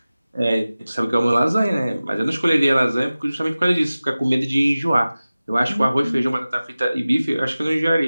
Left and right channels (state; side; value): inverted; both; correlation -0.97